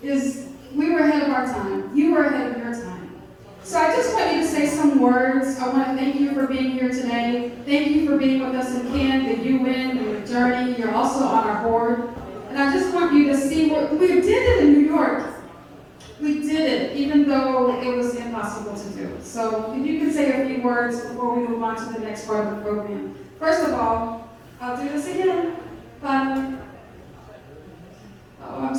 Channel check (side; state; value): both; identical; correlation 1.00